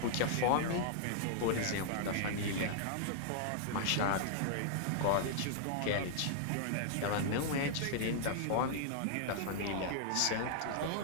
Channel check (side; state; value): both; different; correlation -0.01